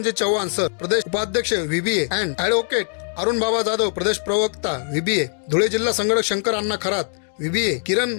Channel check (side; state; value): right; silent; 64 dB below the other